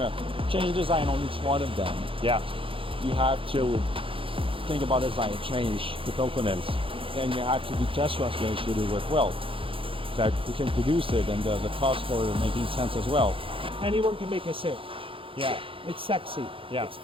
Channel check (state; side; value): late; left; 0.26 ms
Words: change the design on each one of them, yeah, you have to think about design, change the components, and you have to do test runs to make sure they work well. That you can produce it, and the cost for making sense as well. Anyone can make a sale. Yeah. It's sexy. Yeah. It's